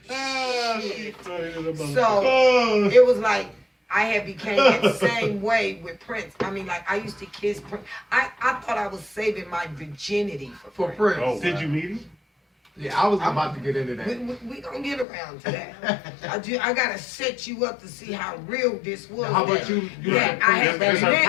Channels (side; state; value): right; drops out; at 15.1 s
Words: So it was like I had became that same way with Prince. I mean, like I used to kiss Prince. I thought I was saving my virginity For Prince. Prince. Oh, did you meet him? Yeah, I was about to get into We, that. we gonna get around to that. I gotta set you up to see how real this was. How about that- you? that I had That's to her man-